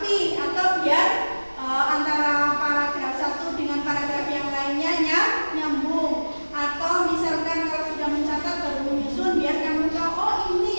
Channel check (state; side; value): inverted; both; correlation -1.00